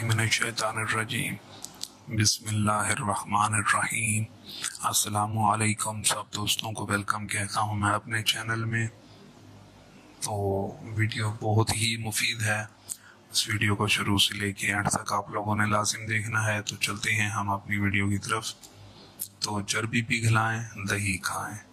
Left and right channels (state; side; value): identical; both; correlation 1.00